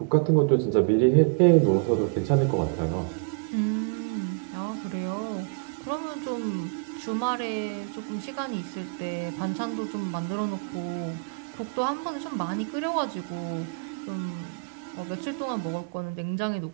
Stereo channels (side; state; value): left; quieter; 34.7 dB